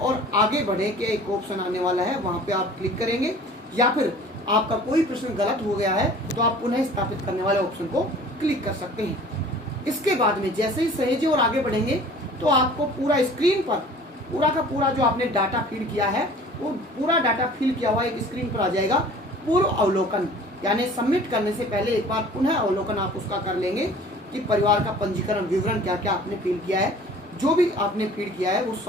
आगे बढ़े के एक ऑप्शन आने वाला है, वहां पे आप क्लिक करेंगे, या फिर आपका कोई प्रश्न गलत हो गया है तो आप पुनः स्थापित करने वाले ऑप्शन को क्लिक कर सकते हैं। इसके बाद में जैसे ही सहेजे और आगे बढ़ेंगे तो आपको पूरा स्क्रीन पर पूरा का पूरा जो आपने डाटा फीड किया है वो पूरा डाटा फिल किया हुआ एक स्क्रीन पर आ जाएगा। पूर्व अवलोकन, यानी सबमिट करने से पहले एक बार पुनः अवलोकन आप उसका कर लेंगे कि परिवार का पंजीकरण विवरण क्या क्या आपने फिल किया है, जो भी आपने फीड किया है वो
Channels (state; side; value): normal; both; correlation 0.47